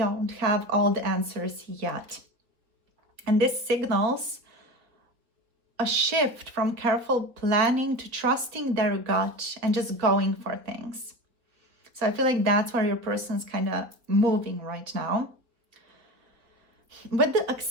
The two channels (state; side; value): late; left; 3.9 ms